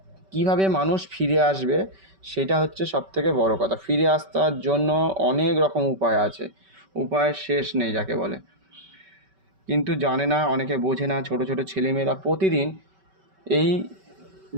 কীভাবে মানুষ ফিরে আসবে সেটা হচ্ছে সবথেকে বড় কথা। ফিরে আসার জন্য অনেক রকম উপায় আছে, উপায়ের শেষ নেই যাকে বলে, কিন্তু জানে না, অনেকে বোঝে না। ছোটো ছোটো ছেলেমেয়েরা প্রতিদিন এই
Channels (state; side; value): late; left; 5.2 ms